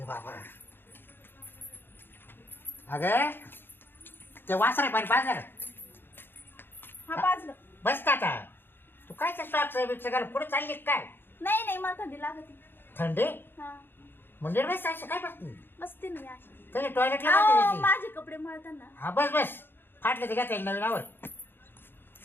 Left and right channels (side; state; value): right; late; 0.10 ms